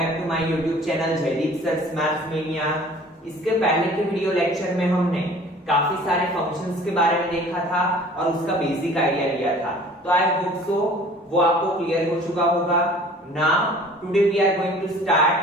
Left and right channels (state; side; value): normal; both; correlation 0.48